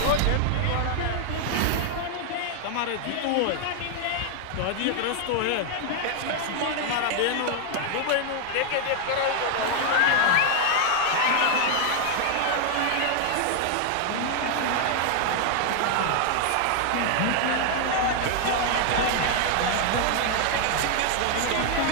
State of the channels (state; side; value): different; both; correlation 0.00